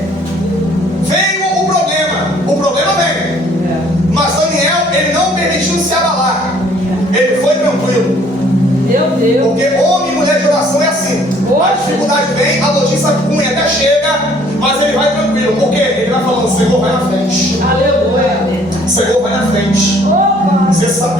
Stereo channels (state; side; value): normal; both; correlation 0.59